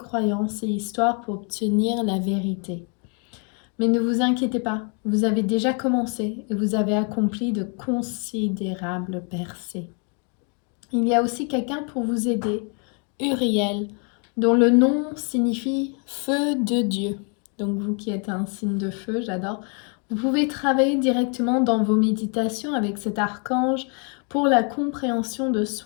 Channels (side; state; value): right; quieter; 38.6 dB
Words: et histoires pour obtenir la vérité. Mais ne vous inquiétez pas, vous avez déjà commencé et vous avez accompli de considérables percées. Il y a aussi quelqu'un pour vous aider, Uriel, dont le nom signifie feu de Dieu. Donc vous qui êtes un signe de feu, j'adore. Vous pouvez travailler directement dans vos méditations avec cet archange pour la compréhension de